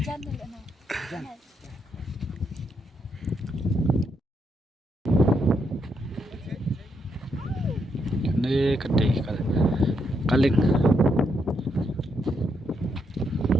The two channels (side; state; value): both; normal; correlation 0.78